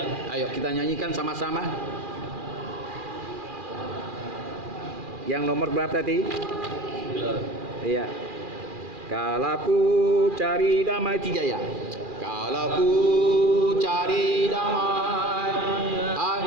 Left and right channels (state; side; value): late; left; 2.4 ms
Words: Ayo kita nyanyikan sama-sama. Yang nomor berapa tadi? 9. Iya. Kalau ku cari damai, 3 ya. Kalau ku cari damai,